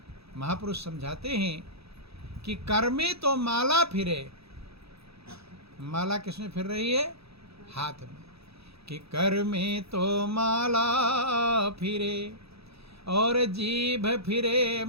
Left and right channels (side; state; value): left; late; 0.78 ms